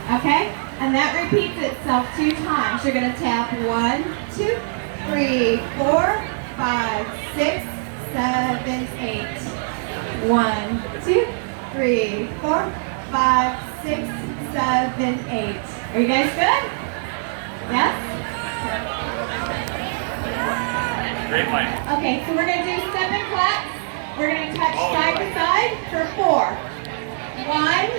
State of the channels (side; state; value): left; silent; digital silence